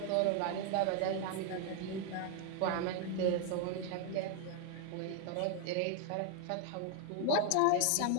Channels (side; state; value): both; different; correlation 0.00